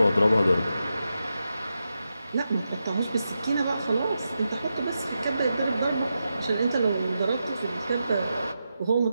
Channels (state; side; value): inverted; both; correlation -0.88